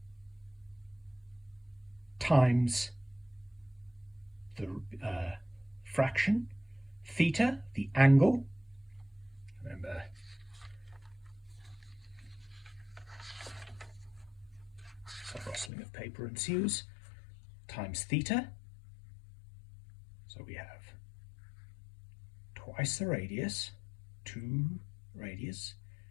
times the fraction, theta, the angle. Remember, some rustling of paper ensues, times theta. So we have twice the radius, 2 radius,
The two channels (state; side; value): drops out; right; at 15.7 s